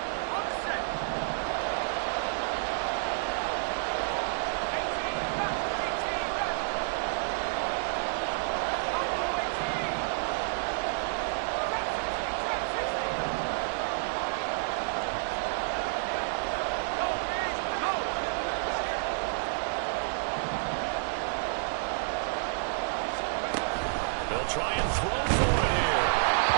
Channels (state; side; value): silent; left; digital silence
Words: They'll try and throw for it here.